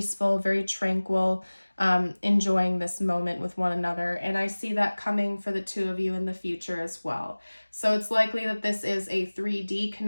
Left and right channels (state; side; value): inverted; both; correlation -1.00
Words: very tranquil, enjoying this moment with one another. And I see that coming for the two of you in the future as well. So it's likely that this is a 3D